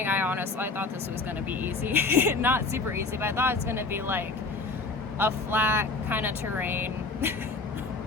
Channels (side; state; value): right; quieter; 3.7 dB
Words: I thought this was going to be easy. Not super easy, but I thought it's going to be like a flat kind of terrain,